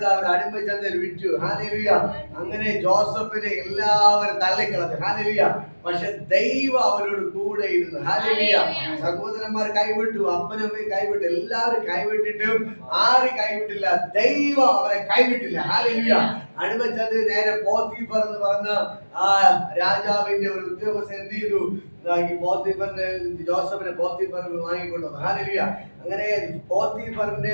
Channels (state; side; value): inverted; both; correlation -1.00